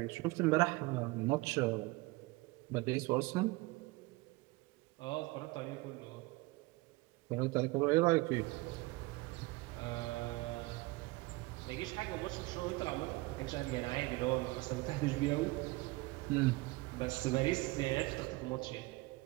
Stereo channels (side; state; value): left; quieter; 22.5 dB